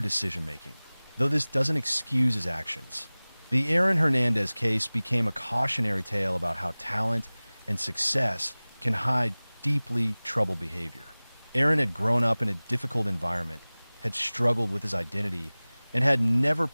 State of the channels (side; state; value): both; inverted; correlation -1.00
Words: though this doesn't excuse his actions. The Aaron Hernandez case became a cautionary tale about how talent and success can hide deeply troubled behavior. Aaron had grown up in a difficult environment, had struggled with his identity, and had never